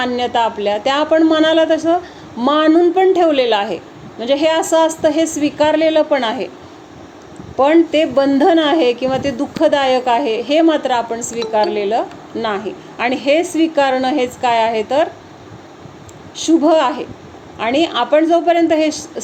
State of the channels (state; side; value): identical; both; correlation 1.00